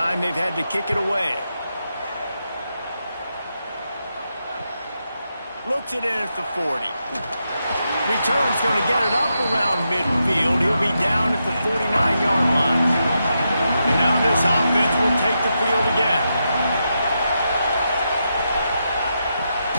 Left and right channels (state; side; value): inverted; both; correlation -0.85